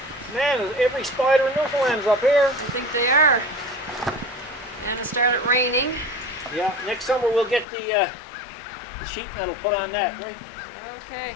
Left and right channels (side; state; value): right; drops out; at 7.7 s